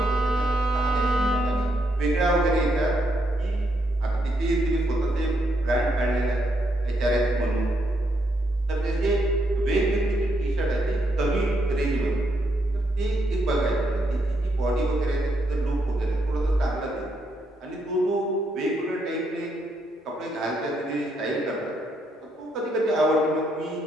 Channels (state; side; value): normal; both; correlation 0.78